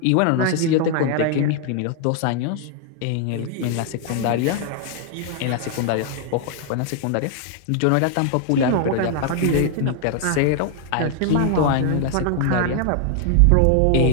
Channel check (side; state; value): both; different; correlation 0.00